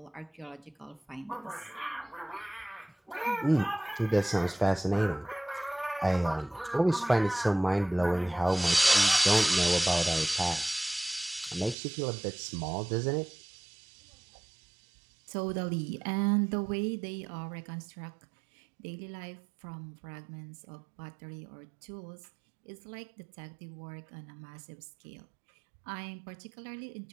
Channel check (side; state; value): left; drops out; at 11.8 s